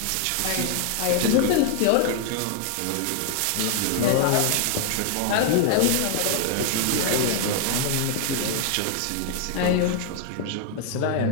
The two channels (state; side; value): different; both; correlation 0.00